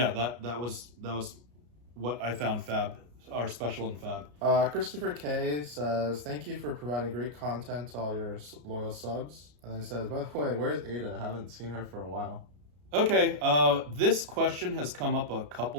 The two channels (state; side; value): late; left; 33 ms